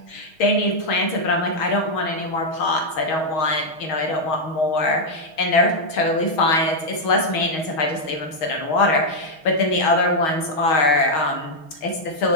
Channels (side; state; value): right; late; 6.4 ms